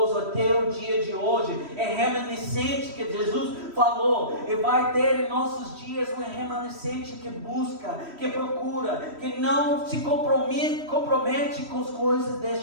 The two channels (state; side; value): late; left; 3.1 ms